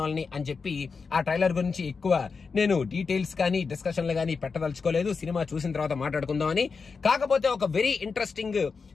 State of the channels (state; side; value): quieter; right; 5.0 dB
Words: వాళ్ళని అని చెప్పి ఆ ట్రైలర్ గురించి ఎక్కువ నేను డీటెయిల్స్ కానీ డిస్కషన్లు కానీ పెట్టదలుచుకోలేదు. సినిమా చూసిన తర్వాత మాట్లాడుకుందామని. కాకపోతే ఒక వెరీ ఇంట్రెస్టింగ్